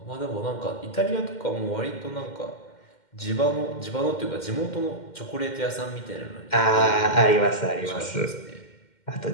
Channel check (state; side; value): late; right; 2.1 ms